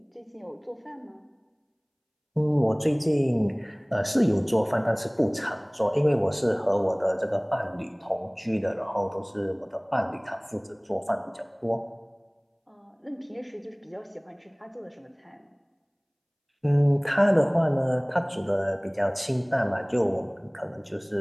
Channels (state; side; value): identical; both; correlation 1.00